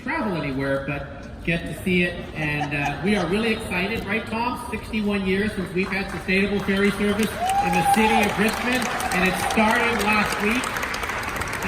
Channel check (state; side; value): identical; both; correlation 1.00